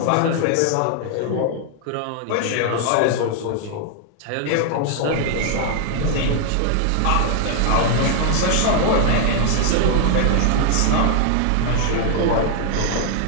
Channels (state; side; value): different; both; correlation 0.00